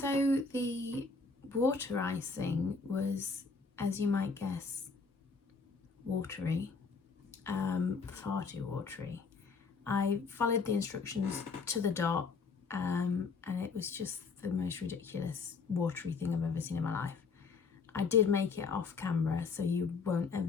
the water icing was, as you might guess, watery. Far too watery. I followed the instructions to the dot, and it was just the most ridiculous watery thing I've ever seen in my life. I did make it off camera, so you won't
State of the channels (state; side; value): quieter; right; 4.7 dB